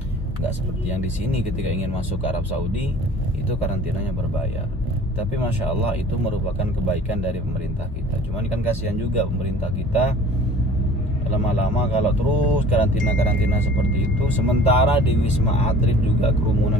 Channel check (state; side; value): normal; both; correlation 0.47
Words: Nggak seperti yang di sini ketika ingin masuk ke Arab Saudi itu karantinanya berbayar. Tapi Masya Allah itu merupakan kebaikan dari pemerintah kita. Cuman kan kasihan juga pemerintah kita, lama-lama kalau terus karantina seperti itu, sementara di Wisma Atlet juga